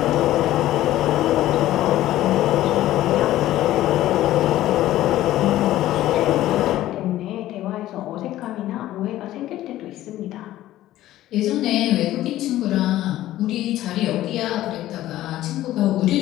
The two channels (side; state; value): right; quieter; 14.4 dB